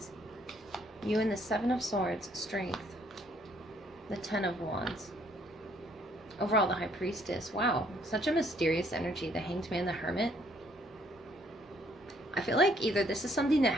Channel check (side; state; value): both; normal; correlation 0.66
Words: You and the Seven of Swords, Strength. The Ten of Wands. Overall, the High Priestess. Wow, such a mysterious energy. The Hanged Man, the Hermit. I feel like either this is something that